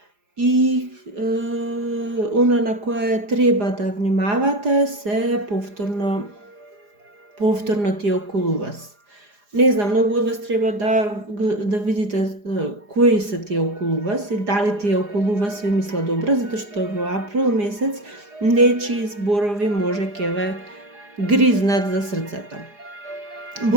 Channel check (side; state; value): left; late; 4.9 ms